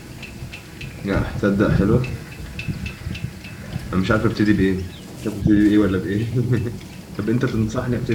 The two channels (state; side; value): identical; both; correlation 1.00